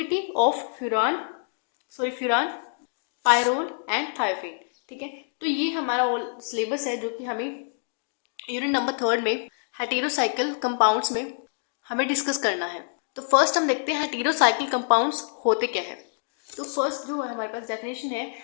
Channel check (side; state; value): right; silent; digital silence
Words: of furan, pyrrole and thiophene. ठीक है। तो ये हमारा ऑल सिलेबस है जो कि हमें यूनिट नंबर 3 में हेटेरोसाइकिल कंपाउंड्स में हमें डिस्कस करना है। तो फर्स्ट हम देखते हैं हेटेरोसाइकिल कंपाउंड्स होते क्या है। तो फर्स्ट जो है हमारे पास डेफिनेशन है,